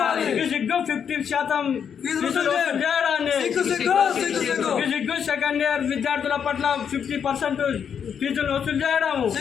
సిగ్గు 50% ఫీజులు వసూలు చేయడాన్ని సిగ్గు సిగ్గు సిగ్గు సిగ్గు. సిగ్గు సెకండ్ ఇయర్ విద్యార్థుల పట్ల 50% ఫీజులు వసూలు చేయడం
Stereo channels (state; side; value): quieter; right; 7.6 dB